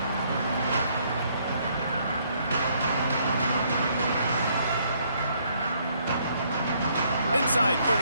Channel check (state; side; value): inverted; both; correlation -0.68